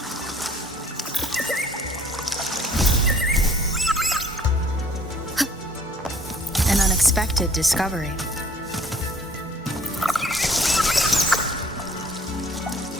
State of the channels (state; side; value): normal; both; correlation 0.57